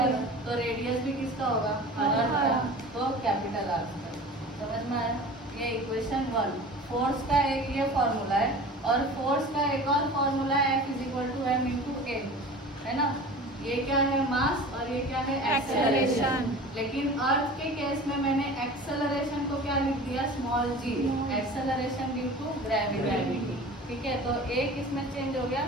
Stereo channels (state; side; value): normal; both; correlation 0.38